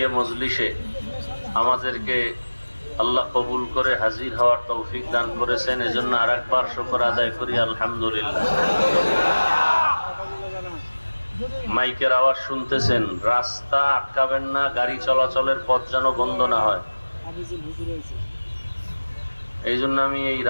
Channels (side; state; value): both; inverted; correlation -1.00